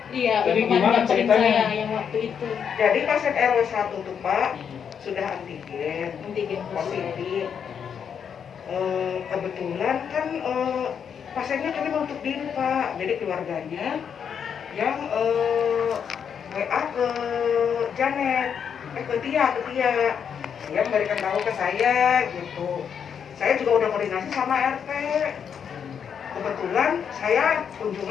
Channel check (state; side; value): quieter; right; 7.5 dB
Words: Iya, Jadi yang gimana kemarin ceritanya? saya yang waktu itu Jadi pasien RW 1 tuh Pak sudah antigen antigen positif. Kebetulan kan pasiennya kami menutup diri Pak, jadi keluarganya yang WA ke Janet, ke Tia, dia memberikan tahu ke saya gitu. Saya juga udah koordinasi sama RT. Kebetulan saya